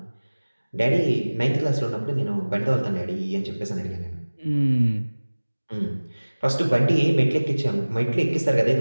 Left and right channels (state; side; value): inverted; both; correlation -1.00